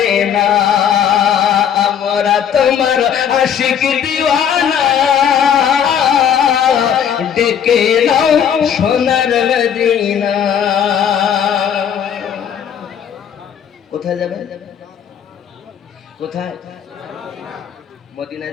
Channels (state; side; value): quieter; right; 8.6 dB